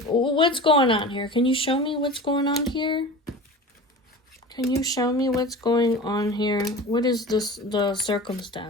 what's going on here? Can you show me what's going on here? Can you show me what's going on here? What is the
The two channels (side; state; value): both; normal; correlation 0.35